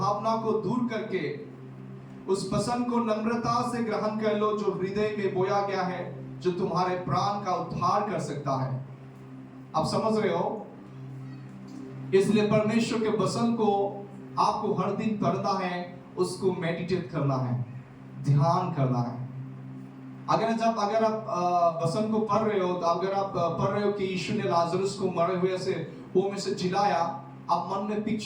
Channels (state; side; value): identical; both; correlation 1.00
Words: को दूर करके उस वचन को नम्रता से ग्रहण कर लो जो हृदय में बोया गया है, जो तुम्हारे प्राण का उद्धार कर सकता है। आप समझ रहे हो? इसलिए परमेश्वर के वचन को आपको हर दिन पढ़ना है, उसको मेडिटेट करना है, ध्यान करना है। अगर आप वचन को पढ़ रहे हो, तो अगर आप पढ़ रहे हो कि यीशु ने लाजरस को मरे हुए से वो में से जिलाया, आप मन में